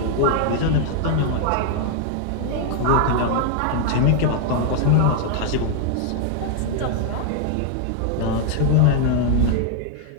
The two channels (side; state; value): both; different; correlation 0.00